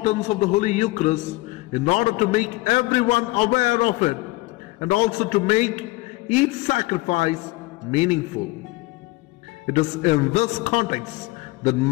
of the Holy Eucharist in order to make everyone aware of it and also to make each sacrifice meaningful. It is in this context that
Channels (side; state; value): right; quieter; 21.2 dB